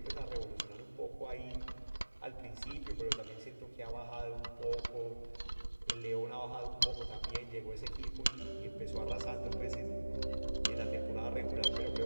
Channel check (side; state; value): both; inverted; correlation -1.00